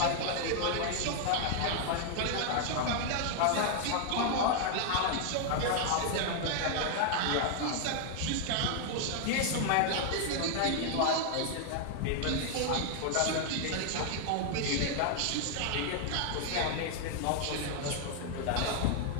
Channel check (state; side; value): different; both; correlation 0.00